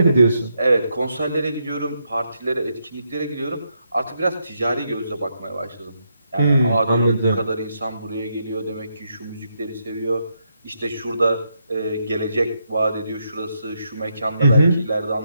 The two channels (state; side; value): inverted; both; correlation -0.79